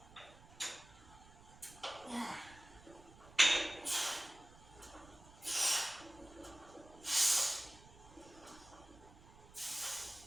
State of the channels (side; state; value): right; noise; rumble, 21 dB below the sound